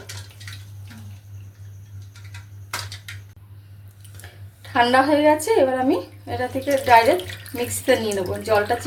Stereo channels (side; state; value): both; identical; correlation 1.00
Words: ঠান্ডা হয়ে গেছে, এবার আমি এটা থেকে ডাইরেক্ট মিক্সিতে নিয়ে নেবো। জলটা